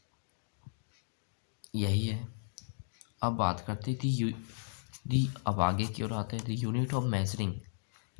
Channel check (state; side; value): silent; right; digital silence